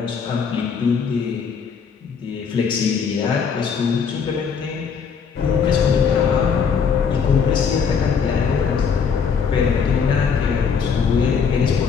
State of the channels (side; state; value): right; quieter; 6.3 dB